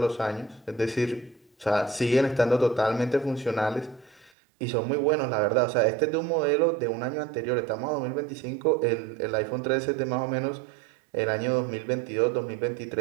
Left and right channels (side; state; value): left; drops out; at 4.3 s